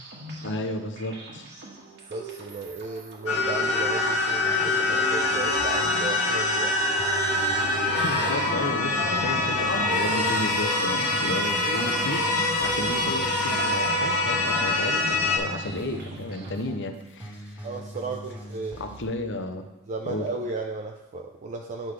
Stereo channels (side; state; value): both; normal; correlation 0.17